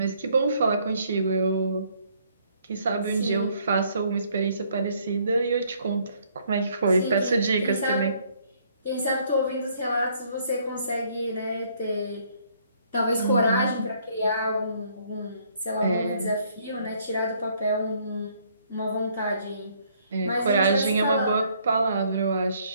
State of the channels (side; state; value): both; inverted; correlation -0.65